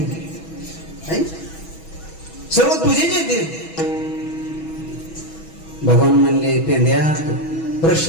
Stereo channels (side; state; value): right; late; 6.2 ms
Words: सर्व तुझेच येते. भगवान म्हणले पेंद्या